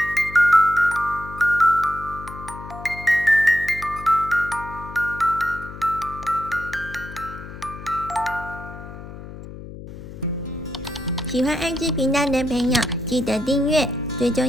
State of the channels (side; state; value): left; noise; hum, 13 dB below the sound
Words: 喜欢爱织频道的朋友，记得订阅，最